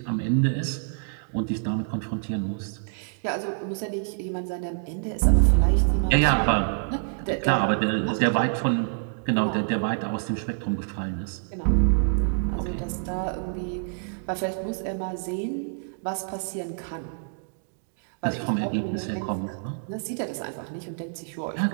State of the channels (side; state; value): left; silent; digital silence